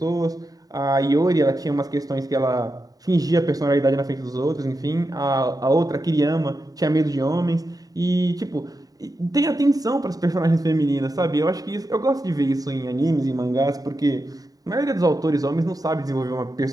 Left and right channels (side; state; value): left; late; 0.18 ms